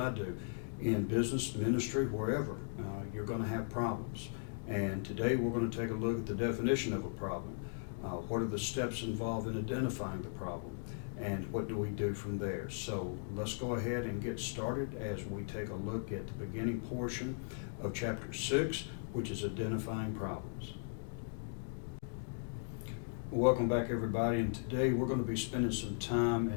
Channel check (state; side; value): silent; right; digital silence